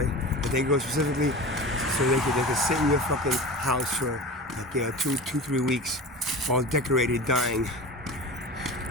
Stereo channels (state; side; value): normal; both; correlation 0.33